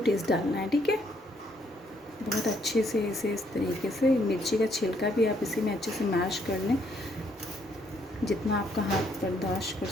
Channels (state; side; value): normal; both; correlation 0.70